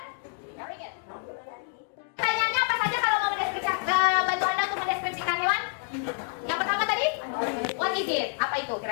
Very good. Pertanyaannya apa saja kalau mau mendeskripsikan bantu Anda untuk mendeskripsikan hewan? Yang pertama tadi, what is it? Apa itu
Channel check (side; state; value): right; silent; 59 dB below the other